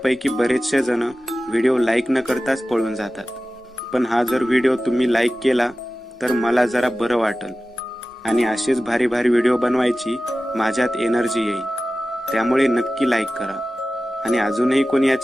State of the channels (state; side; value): normal; both; correlation 0.95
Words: बरेचसे जण व्हिडिओ लाईक न करताच पळून जातात, पण हा जर व्हिडिओ तुम्ही लाईक केला तर मला जरा बरं वाटेल आणि असेच भारी भारी व्हिडिओ बनवायची माझ्यात एनर्जी येईल. त्यामुळे नक्की लाईक करा आणि अजूनही कोणी या